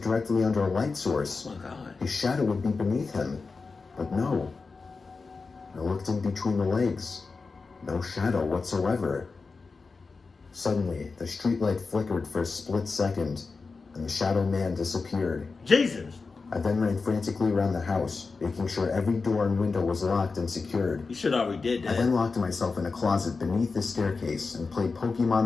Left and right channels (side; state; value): right; quieter; 4.3 dB